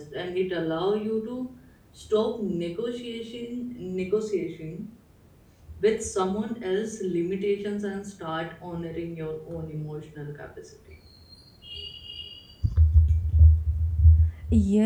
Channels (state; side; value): identical; both; correlation 1.00